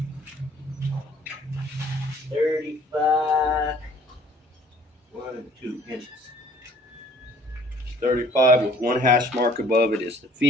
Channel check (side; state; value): both; normal; correlation 0.55